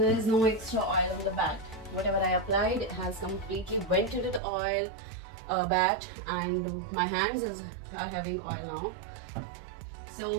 is no extra oil on the bat. Whatever I applied, it has completely went into the oil bat, and my hands are having oil now.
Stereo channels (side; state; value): left; drops out; at 4.4 s